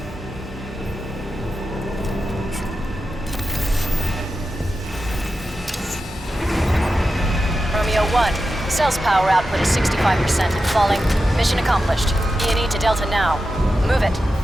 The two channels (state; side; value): normal; both; correlation 0.91